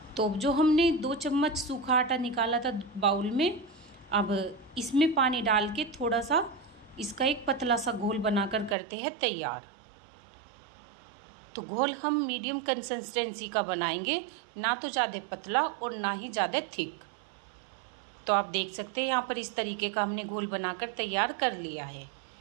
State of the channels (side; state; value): left; drops out; at 8.8 s